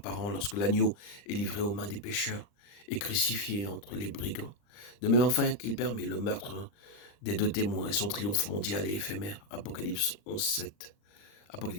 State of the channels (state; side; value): late; right; 39 ms